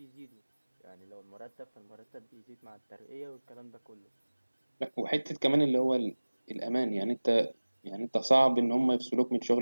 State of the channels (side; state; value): both; inverted; correlation -1.00